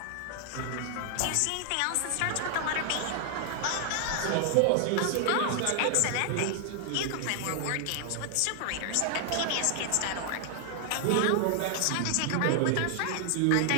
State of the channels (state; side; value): different; both; correlation 0.00